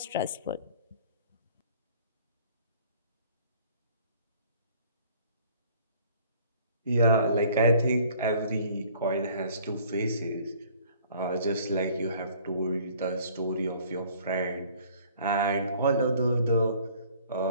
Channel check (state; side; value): inverted; both; correlation -0.55